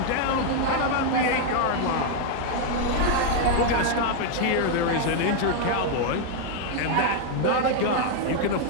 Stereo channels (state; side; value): different; both; correlation 0.00